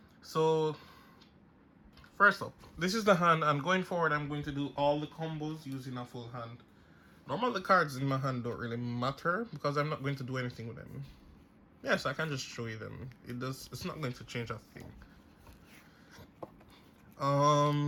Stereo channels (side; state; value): both; identical; correlation 1.00